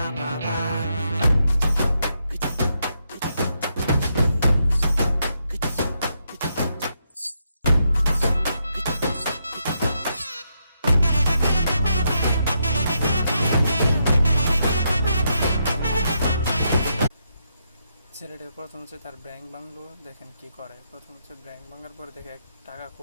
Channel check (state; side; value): inverted; both; correlation -0.80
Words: ছেলেটা প্রথম হচ্ছে তার ব্যাংক ভাঙলো, দেখেন কি করে। প্রথম হচ্ছে ব্যাংক ভাঙার পরে দেখে টাকা